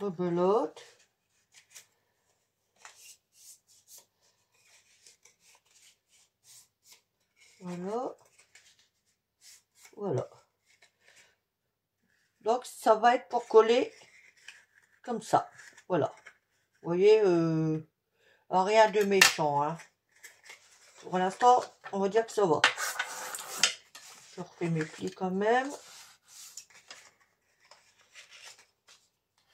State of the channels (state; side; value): identical; both; correlation 1.00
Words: Voilà. Voilà. Donc ça va être pour coller comme ça. Voilà. Vous voyez, rien de méchant. Hein. Pour l'instant, on va dire que ça va. Je refais mes plis quand même.